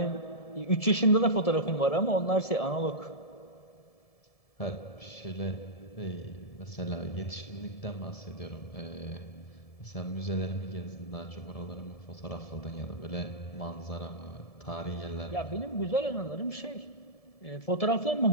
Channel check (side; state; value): right; late; 1.7 ms